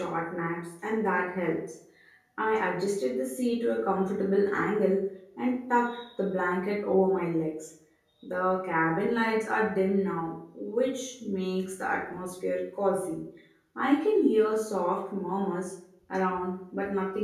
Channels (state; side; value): identical; both; correlation 1.00